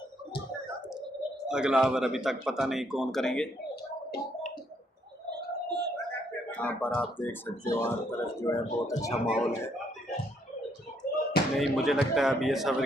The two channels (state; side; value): normal; both; correlation 0.71